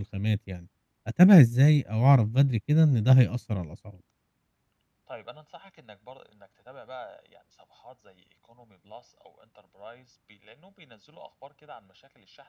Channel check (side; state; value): both; identical; correlation 1.00